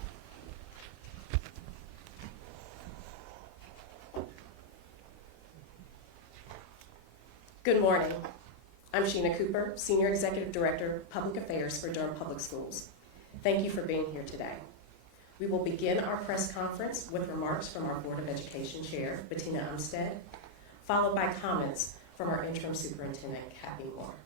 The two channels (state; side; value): late; right; 25 ms